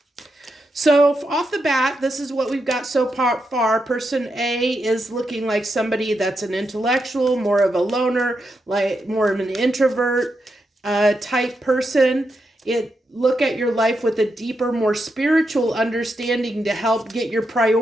So off the bat, this is what we've got so far. Person A is looking like somebody that's an intellectual, more of a loner, like more of an introvert type person. Look at your life with a deeper, more spiritual understanding to help get your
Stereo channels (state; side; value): normal; both; correlation 0.84